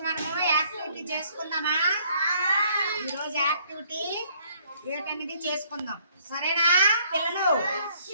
మనము activity చేసుకుందామా? ఈ రోజు యాక్టివిటీ ఏంటనేది చేసుకుందాం. సరేనా పిల్లలు?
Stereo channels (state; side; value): inverted; both; correlation -0.63